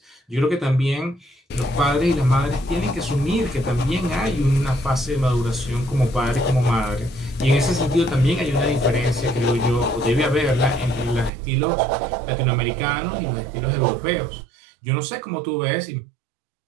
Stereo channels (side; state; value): left; drops out; at 11.3 s